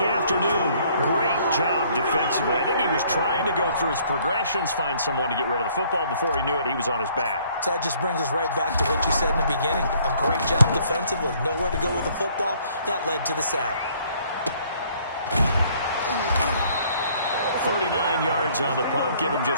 Great job defensively. I think he was trying to go through his progressions, find someone to get rid of the football. Before he knew it, he was on his back. So that just brings us right back to what you said in the beginning. A great job defensively. Nowhere to go with the football. That led to the sack. 39 yards on the punt. Give him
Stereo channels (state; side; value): inverted; both; correlation -0.61